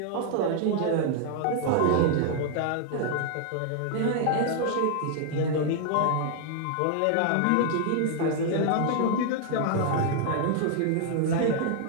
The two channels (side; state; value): both; different; correlation 0.00